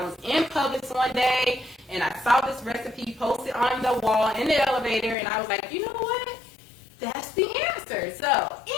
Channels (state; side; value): drops out; right; at 5.2 s